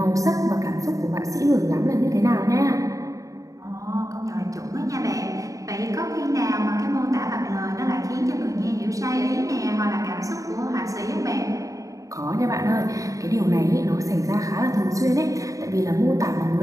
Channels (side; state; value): left; late; 0.16 ms